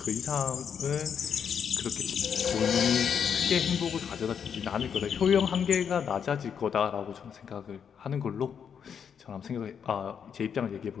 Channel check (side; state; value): right; quieter; 7.5 dB